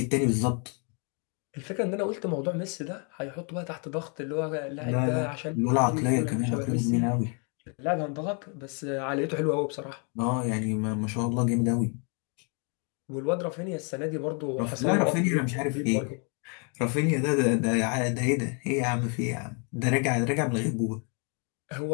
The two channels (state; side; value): quieter; right; 37.9 dB